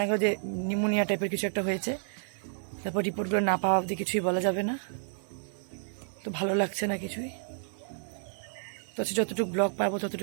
গেল যে নিউমোনিয়া টাইপের কিছু একটা হয়েছে। তারপর রিপোর্টগুলো না পাওয়া অবধি কিছুই বলা যাবে না। তো ভালো লাগছে না কিছুই। তো যতটুকু ব্লগ পাবো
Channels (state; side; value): silent; left; 57 dB below the other